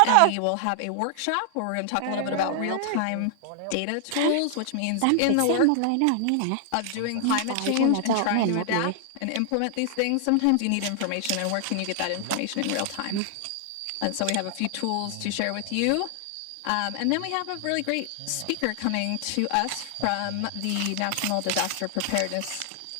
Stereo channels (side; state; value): both; different; correlation 0.00